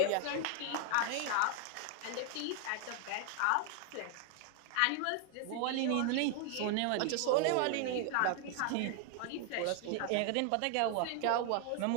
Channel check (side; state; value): both; different; correlation 0.00